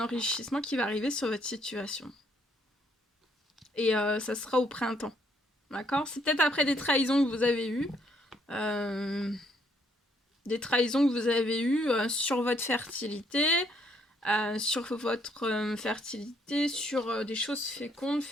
qui va arriver sur votre situation. Et ça sera au printemps. D'accord? C'est peut-être après des trahisons que vous avez eues. Des trahisons que vous avez eues sur votre fertilité. Sur votre fertilité, sur des choses fécondes,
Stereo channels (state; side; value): normal; both; correlation 0.69